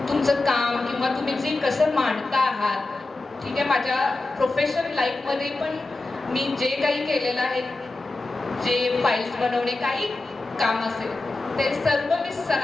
काम किंवा तुम्ही जे कसं मांडता आहात, ठीक आहे. माझ्या प्रोफेशनल लाईफमध्ये पण मी जे काही केलेलं आहे, जे फाईल्स बनवणे काही काम असेल ते सर्व मी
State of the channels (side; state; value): right; quieter; 3.2 dB